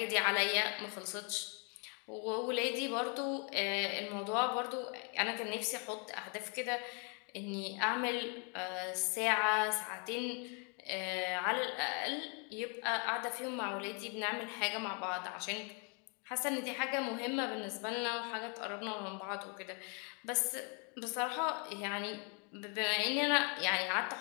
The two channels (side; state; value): right; quieter; 36.7 dB